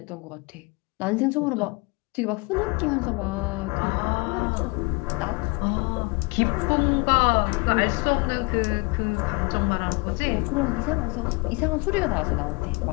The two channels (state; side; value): quieter; right; 27.8 dB